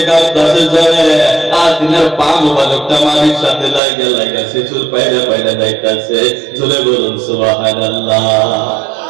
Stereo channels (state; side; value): drops out; left; at 3.8 s